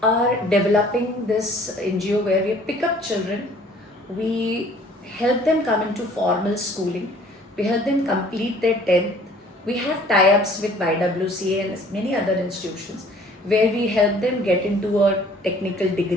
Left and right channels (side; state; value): both; normal; correlation 0.54